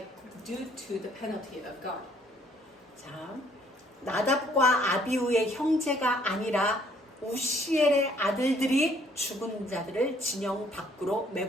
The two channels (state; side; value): normal; both; correlation 0.63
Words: due to the penalty of God. 자, 나답과 아비후의 형제가 아니라 우시엘의 아들들이 죽은 자들을 진영 밖으로